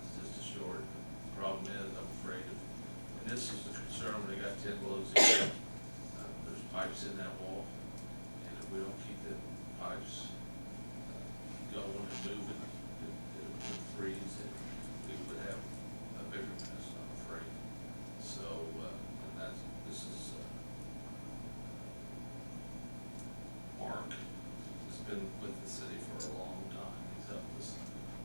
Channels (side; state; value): both; inverted; correlation -1.00